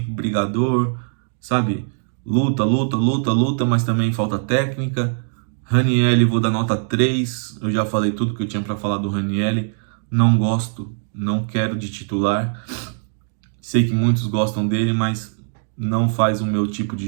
brigador, sabe? Luta, mas também falta técnica. Ranieri, vou dar nota 3, eu já falei tudo que eu tinha para falar do Ranieri, não gosto, não quero de titular, sei que muitos gostam dele, mas não faz o meu tipo de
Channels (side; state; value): left; silent; digital silence